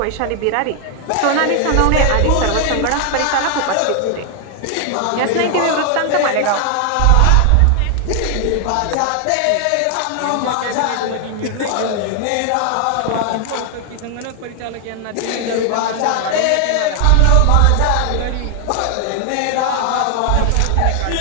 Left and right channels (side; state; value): both; different; correlation 0.00